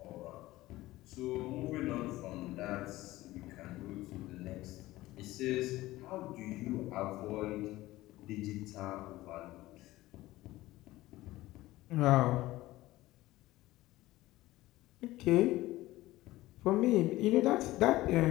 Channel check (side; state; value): right; quieter; 17.4 dB